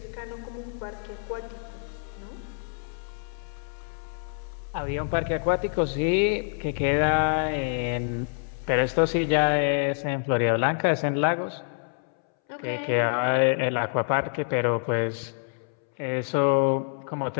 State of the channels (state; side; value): silent; right; 60 dB below the other